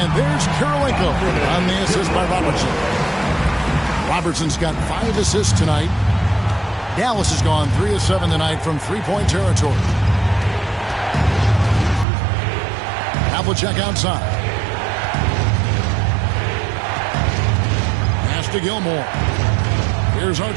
there's Kirilenko on the assist by Robertson. Robertson's got 5 assists tonight. Dallas has gone 3 of 7 tonight from three-point territory. Havlicek outside. Pass to Gilmore. Here's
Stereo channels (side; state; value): left; drops out; at 12.1 s